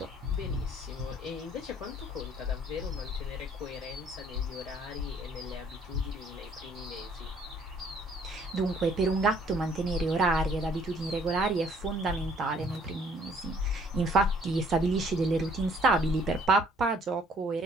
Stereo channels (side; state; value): both; normal; correlation 0.60